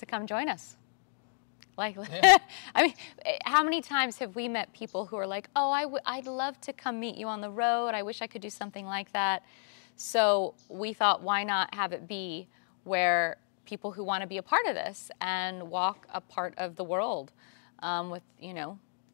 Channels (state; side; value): silent; right; digital silence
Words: come join us. Like, Yeah. I mean, how many times have we met people who are like, oh, I'd love to come meet you on the road. I wish I could do something like that. So we thought, why not have it be where people who want to be a part of this and walk a part of the world with,